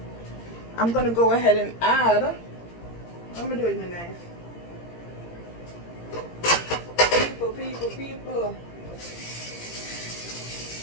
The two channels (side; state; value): right; late; 17 ms